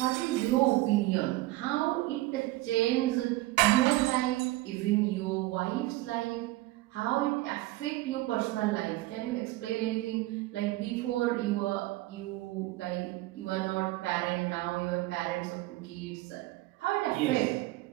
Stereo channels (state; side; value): quieter; left; 18.7 dB